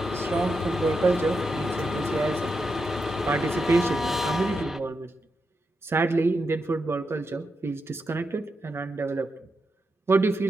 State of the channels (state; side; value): normal; both; correlation 0.86